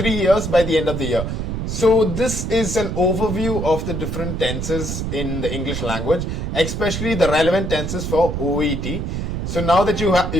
years by the end of the year. So this is an overview of the different tenses in the English language, especially the relevant tenses for OET. So now that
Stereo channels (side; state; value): right; noise; rumble, 3 dB below the sound